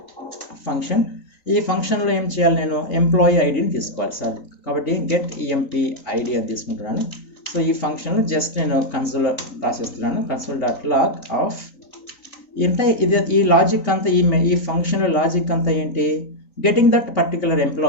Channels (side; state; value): right; late; 3.9 ms